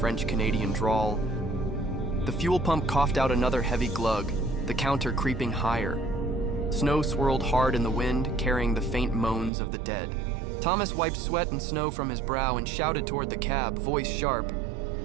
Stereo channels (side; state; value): left; drops out; at 9.5 s